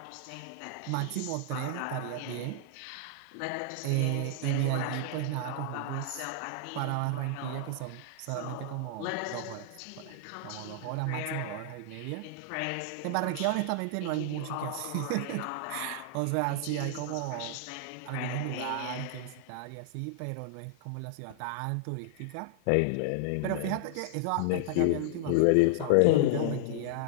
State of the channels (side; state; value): both; different; correlation -0.01